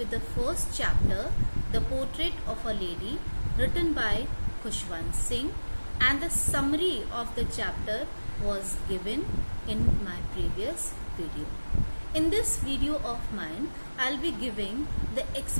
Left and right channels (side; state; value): both; inverted; correlation -1.00